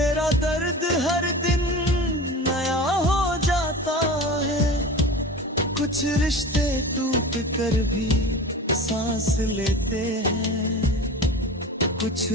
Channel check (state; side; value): normal; both; correlation 0.33